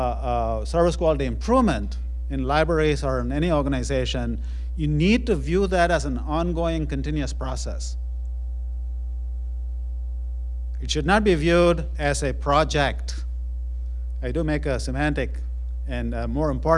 service quality improvement in libraries or in any organization, you need to view that as an ongoing, continuous process. It should not be viewed as a project. I do make a semantic and a more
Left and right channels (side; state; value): both; identical; correlation 1.00